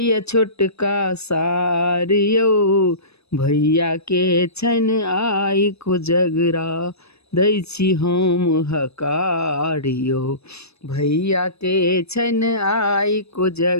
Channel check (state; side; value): late; right; 0.79 ms